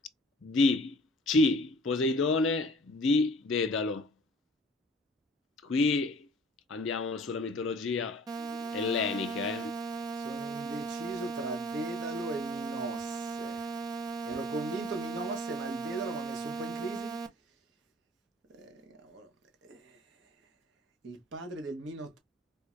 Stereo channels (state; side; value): normal; both; correlation 0.51